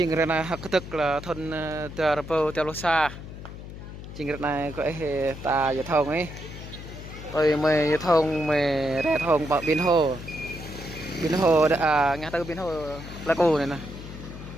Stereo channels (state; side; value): noise; left; hum, 12 dB below the sound